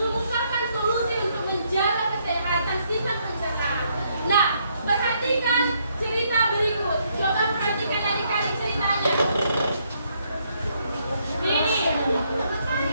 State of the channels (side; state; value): both; inverted; correlation -0.73